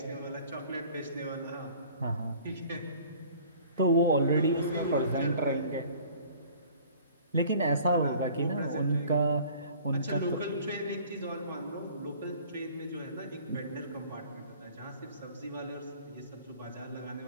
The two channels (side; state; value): both; inverted; correlation -0.50